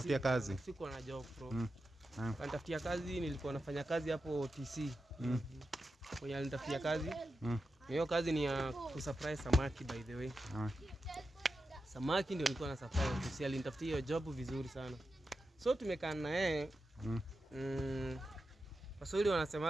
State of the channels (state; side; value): normal; both; correlation 0.90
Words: kazi. Siko na job bro. Alinitafutia kazi, nilikuwa nafanya kazi hapo TC. Kwa alinitafutia kazi. Hiyo kazi ni ya kusurprise samaki by the way. Samaki ndio nilikuwa na surprise. TC alinitafutia hiyo job vizuri sana. So tumekaa na yeye. Waswahili